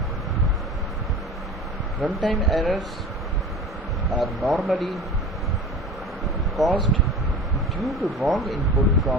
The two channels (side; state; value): both; normal; correlation 0.36